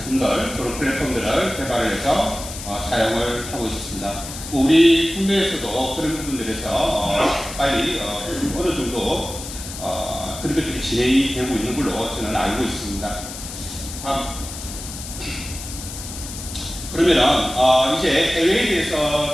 그런 플랫폼들을 개발을 해서 사용을 하고 있습니다. 우리 국내에서도 그런 부분들에서 빨리 어느 정도 그런 것들이 진행이 되고 있는 걸로 저는 알고 있습니다. 그러면은 이제 해외에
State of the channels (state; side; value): noise; left; hiss, 10 dB below the sound